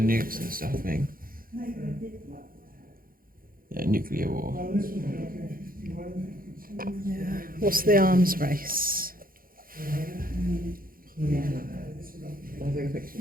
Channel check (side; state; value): left; late; 0.42 ms